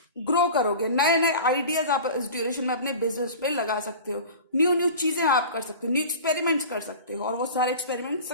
ग्रो करोगे, नए नए आइडियाज आप इस ड्यूरेशन में अपने बिजनेस पे लगा सकते हो, न्यू न्यू चीजें आप कर सकते हो, न्यू एक्सपेरिमेंट्स कर सकते हो और वो सारे एक्सपेरिमेंट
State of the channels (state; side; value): inverted; both; correlation -0.37